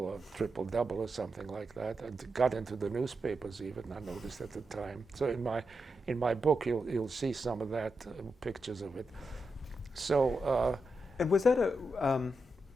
triple double or something like that, and got into the newspapers even, I noticed at the time. So in my book you'll see some of that, pictures of it. So. And was that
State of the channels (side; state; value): both; normal; correlation 0.87